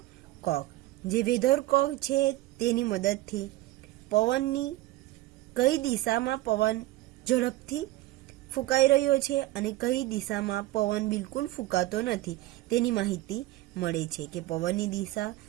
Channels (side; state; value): left; quieter; 17.1 dB